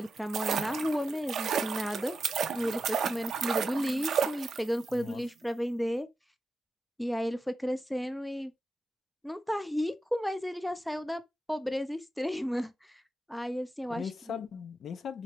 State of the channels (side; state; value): both; normal; correlation 0.88